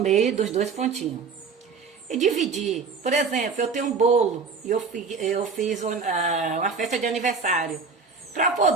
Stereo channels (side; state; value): left; quieter; 5.0 dB